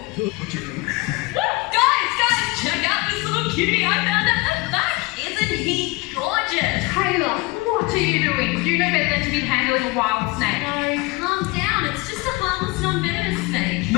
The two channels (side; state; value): right; quieter; 24.2 dB